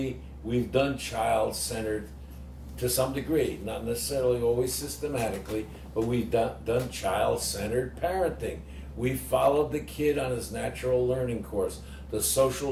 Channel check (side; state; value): both; identical; correlation 1.00